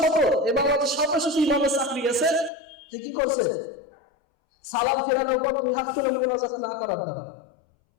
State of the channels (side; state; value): right; drops out; at 2.5 s